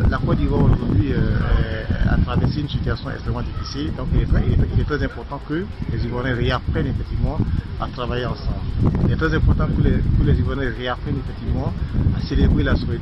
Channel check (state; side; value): identical; both; correlation 1.00